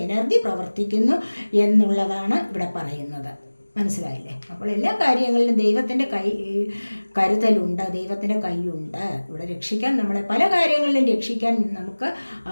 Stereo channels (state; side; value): inverted; both; correlation -1.00